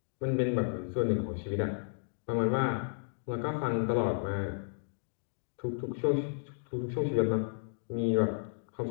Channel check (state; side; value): silent; right; digital silence